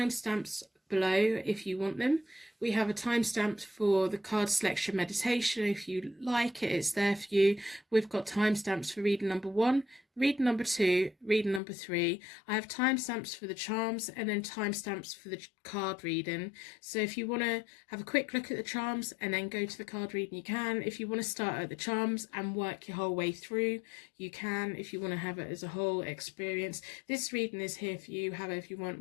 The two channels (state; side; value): drops out; right; at 11.6 s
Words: below if you want them. We have a timestamp for the card selection meditation. If you like it, it's there for you. We've got timestamps for reading number 1, reading number 2, reading number 3. I have timestamps for the charms and then timestamps for the card reading. So if you want to have a quick look at the charms and then go to the card reading, you can. If you want to start at the charms and work your whole way through, you can. If you want to have it as a whole experience, this reading is here for you however you want,